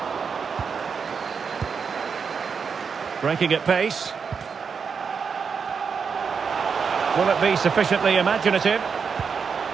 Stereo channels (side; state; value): left; quieter; 6.0 dB